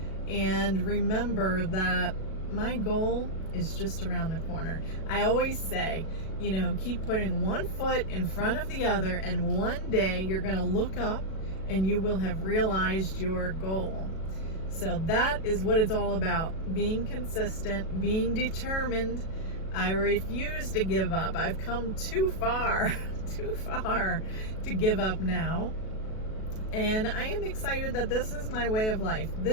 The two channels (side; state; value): right; late; 37 ms